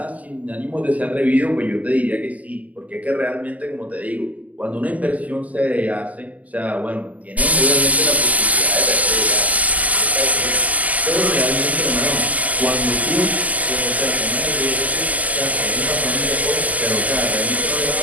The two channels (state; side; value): late; left; 0.076 ms